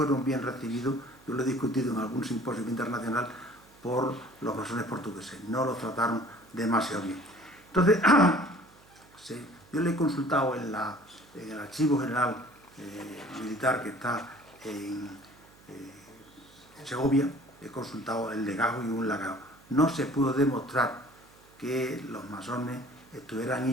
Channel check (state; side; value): noise; right; hum, 27 dB below the sound